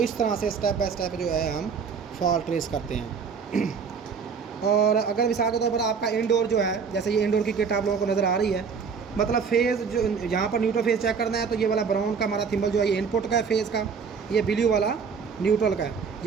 तरह से स्टेप बाय स्टेप जो है हम फॉल्ट ट्रेस करते हैं। और अगर मिसाल के तौर पर आपका इंडोर जो है, जैसे ये इंडोर की किट आप लोगों को नज़र आ रही है, मतलब फेज़ जो यहाँ पर न्यूट्रल फेज़ चेक करना है तो ये वाला ब्राउन का हमारा थिम्बल जो है ये इनपुट का है फेज़ का, ये ब्लू वाला न्यूट्रल का है।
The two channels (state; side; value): quieter; left; 5.9 dB